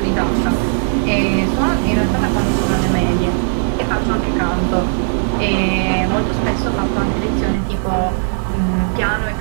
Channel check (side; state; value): left; silent; 68 dB below the other